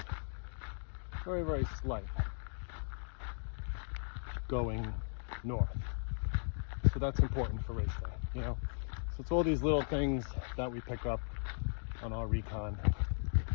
very, very slight, going north. So that's important for race day, So it's all these little things that we pick up on our Recon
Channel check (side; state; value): right; silent; digital silence